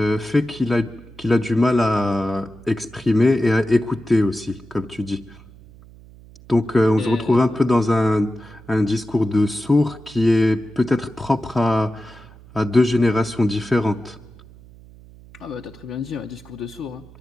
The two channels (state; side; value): noise; right; hum, 22 dB below the sound